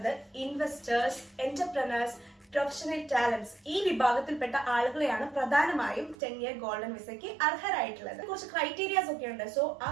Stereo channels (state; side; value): drops out; left; at 6.2 s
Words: ഇൻവെസ്റ്റേഴ്സ്, എന്റർപ്രനേഴ്സ്, പ്രൊഫഷണൽ ടാലന്റ്സ് ഈ വിഭാഗത്തിൽപ്പെട്ട ആളുകളെയാണ് പ്രധാനമായും 10-year ഗോൾഡൻ വിസയ്ക്ക് അർഹരായിട്ടുള്ളത്. കുറച്ച് ക്രൈറ്റീരിയാസ് ഒക്കെ ഉണ്ട്. സോ ആ